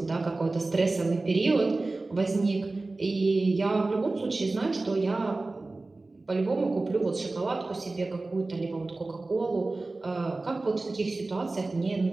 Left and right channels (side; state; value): left; quieter; 3.2 dB